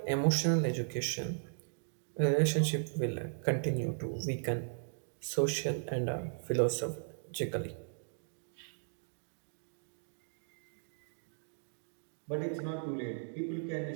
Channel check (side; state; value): left; silent; digital silence